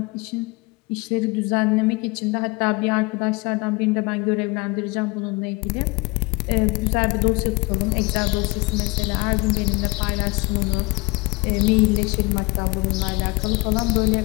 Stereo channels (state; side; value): quieter; right; 24.6 dB